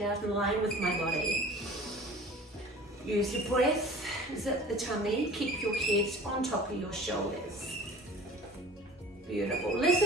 out in line with my body. Use your breath, zip the tummy, keep your head on top of your shoulders. Beautiful.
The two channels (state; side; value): normal; both; correlation 0.43